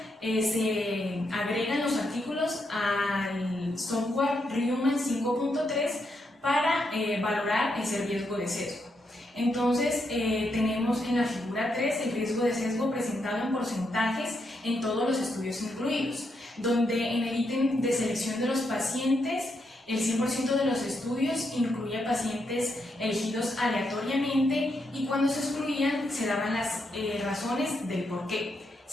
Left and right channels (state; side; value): normal; both; correlation 0.80